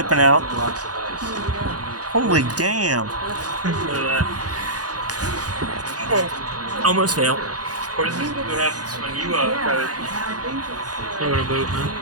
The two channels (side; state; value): left; late; 0.68 ms